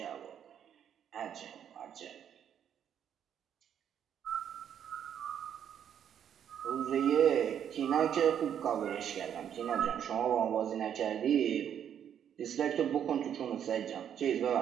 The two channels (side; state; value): left; quieter; 9.1 dB